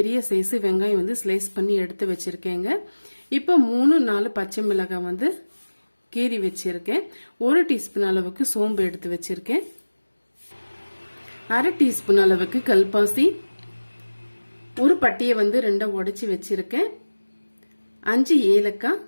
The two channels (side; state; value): both; inverted; correlation -1.00